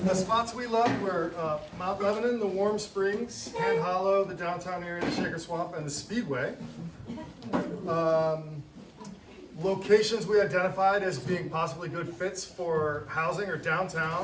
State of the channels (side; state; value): both; identical; correlation 1.00